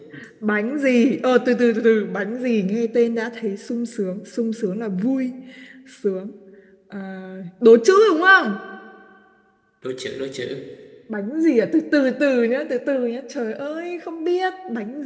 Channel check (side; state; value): both; identical; correlation 1.00